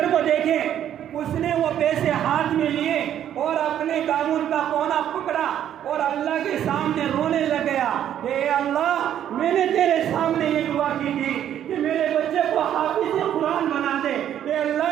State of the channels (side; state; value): left; quieter; 10.5 dB